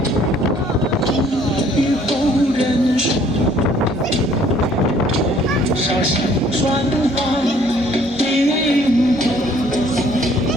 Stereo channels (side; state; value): both; normal; correlation 0.59